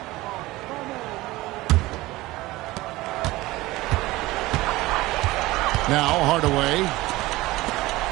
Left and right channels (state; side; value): quieter; left; 19.1 dB